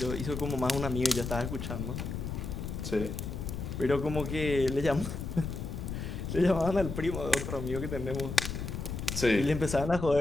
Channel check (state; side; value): noise; left; rumble, 5 dB below the sound